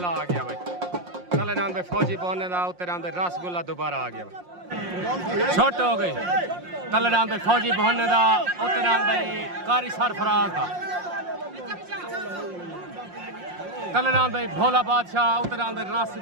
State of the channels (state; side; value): late; left; 5.6 ms